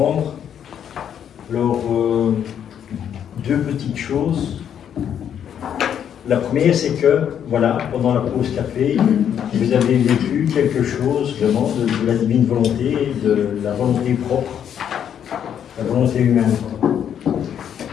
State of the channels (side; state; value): right; quieter; 9.0 dB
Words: Alors, deux petites choses. La première, c'est que, voilà, pendant la pause café, vous avez vécu quelque chose vraiment de la divine volonté, de la volonté propre, la volonté humaine.